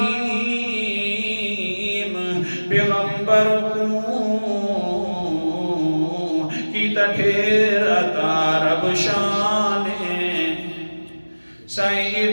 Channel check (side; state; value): both; inverted; correlation -1.00